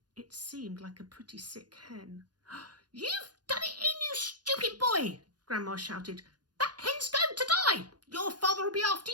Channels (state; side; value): late; left; 0.69 ms